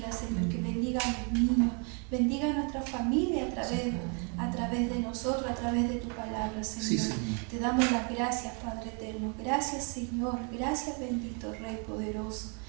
Señor, que bendiga a los niños, bendiga a nuestra familia a través de nosotros, a través de tu palabra, Señor. Sí, Señor. Te damos las gracias, Padre eterno. Gracias, Señor. Gracias, bendito Rey poderoso.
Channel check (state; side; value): quieter; left; 36.9 dB